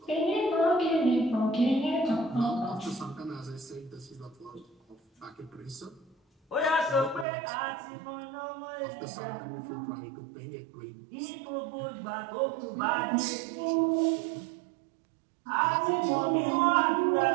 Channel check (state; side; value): drops out; left; at 7.2 s